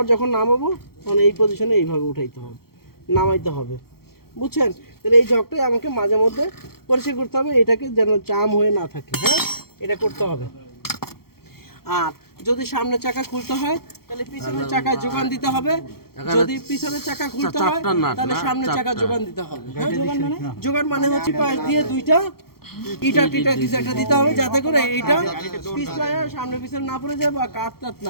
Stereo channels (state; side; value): late; right; 0.94 ms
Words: যখন নামাবো তখন এই পজিশনে এইভাবে উঠাইতে হবে, নামাইতে হবে, বুঝছেন? তাহলে এই জগটাই আমাকে মাঝে মধ্যে পরিষ্কার করতে হবে, এটাকে যেন জাম হয়ে না থাকে, হ্যাঁ, এটা করতে হবে। আর যদি সামনের চাকা খুলতে হয় তাহলে পিছনের চাকায় যোগান দিতে হবে, যদি পিছনের চাকা খুলতে হয় তাহলে সামনের চাকা যোগান দিতে হবে। হ্যাঁ, যোগান মানে হচ্ছে পাশ দিয়ে দুইটা ইটা টিটা কিছু একটা দিতে হবে, যাতে করে এইটা পিছলায় সামনে পিছনে না পড়ে যায় বা কাট টাট